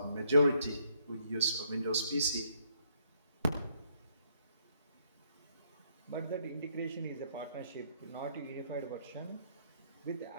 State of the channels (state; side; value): inverted; both; correlation -0.70